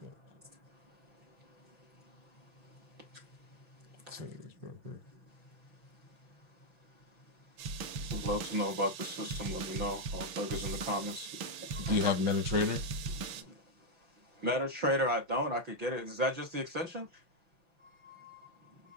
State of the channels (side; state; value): left; late; 6.1 ms